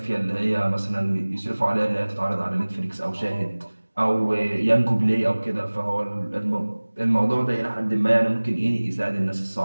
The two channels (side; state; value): both; inverted; correlation -1.00